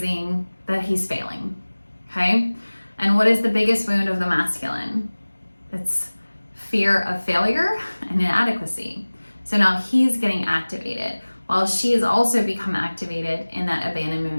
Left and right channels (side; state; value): both; inverted; correlation -1.00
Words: that he's failing, okay? And what is the biggest wound of the masculine? It's fear of failure and inadequacy. So now he's getting activated while she has also become activated in that